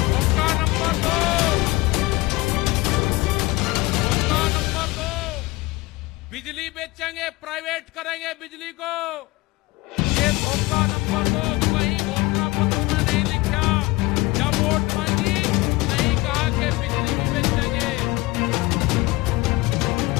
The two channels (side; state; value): right; quieter; 21.4 dB